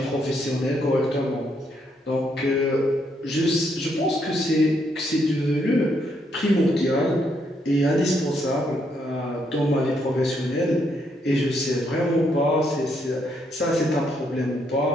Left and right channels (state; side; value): normal; both; correlation 0.75